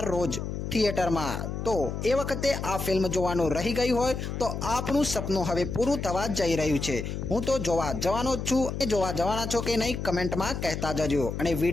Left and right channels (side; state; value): left; noise; hum, 5 dB below the sound